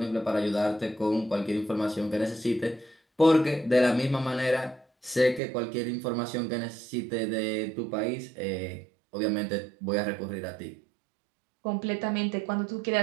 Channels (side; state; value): left; drops out; at 5.4 s